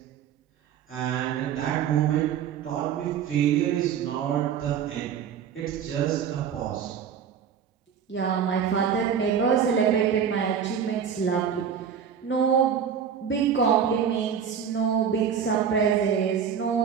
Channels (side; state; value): left; quieter; 7.8 dB